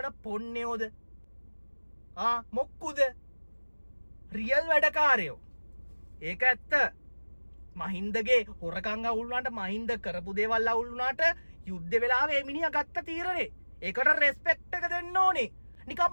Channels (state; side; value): inverted; both; correlation -1.00